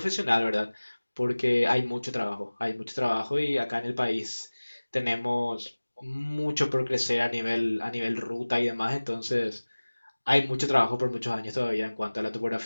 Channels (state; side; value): inverted; both; correlation -1.00